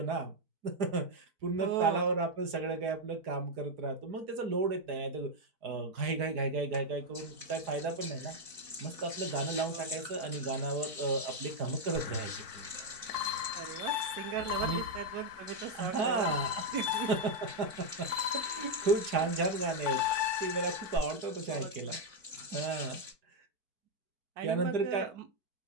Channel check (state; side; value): late; left; 4.5 ms